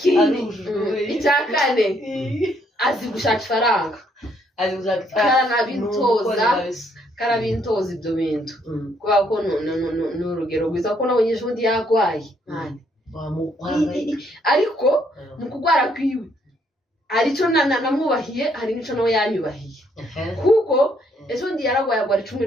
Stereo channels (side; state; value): both; normal; correlation 0.70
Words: icya kane azi gushaka ifaranga karabintoza ibyo bintu kubera ko ni urugero rwiza ko nabonye ejo bundi yarwaye ariko mu kurwara kwiwe hari icyo namwubahiye hari n'icyo nawe yanyubahiye kuko ejo bundi yararwaye agwara